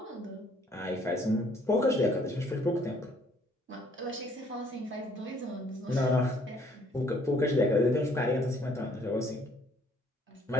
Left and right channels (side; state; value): both; normal; correlation 0.63